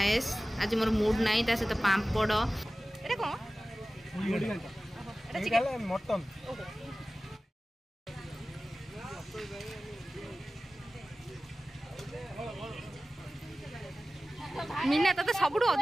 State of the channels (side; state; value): both; normal; correlation 0.96